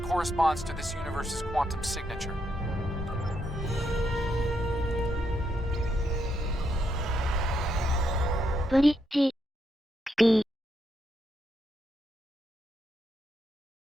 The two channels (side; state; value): both; normal; correlation 0.80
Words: corresponds to this universe's quantum signature. Bridge.